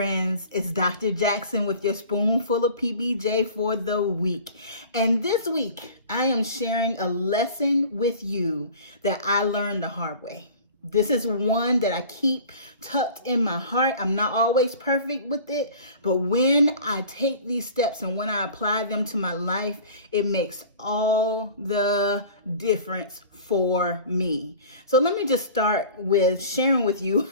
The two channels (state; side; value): inverted; both; correlation -0.42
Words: it's Dr. Jackson with your spoonful of PBJ for the week. And this week, I am sharing a lesson with you that I learned the hard way. This is one that I keep tucked in my heart. I'm not always perfect with it, but when I take these steps and when I apply them to my life, it makes all the difference for me. So let me just start with sharing with you